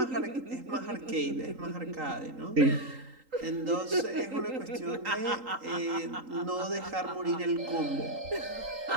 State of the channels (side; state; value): left; late; 3.8 ms